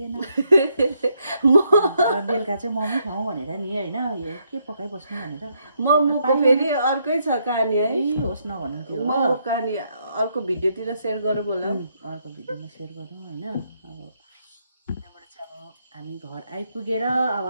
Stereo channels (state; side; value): inverted; both; correlation -0.75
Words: बेलुका चाहिँ मोमो खाउँ भनेर नि होइन यो के पकाइबस्नु भनेर मोमोको फेरि अर्कै छ कहानी है होस् नभनौँ त्यो मोमो कहानी अर्को भिडियोतिर सेयर गरौँ होला अर्को भिडियोमा सेयर गरौँ होइन अब त्यहाँबाट चाहिँ अब हामी घर आइपुगेर अब